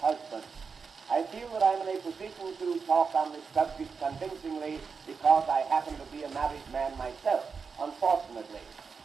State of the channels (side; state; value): left; quieter; 5.4 dB